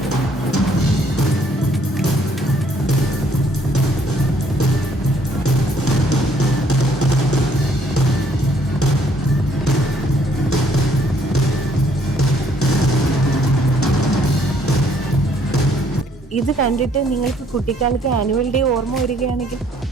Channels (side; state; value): both; normal; correlation 0.64